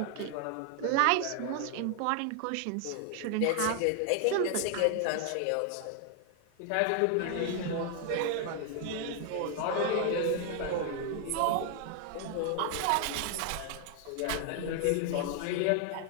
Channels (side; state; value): both; different; correlation 0.00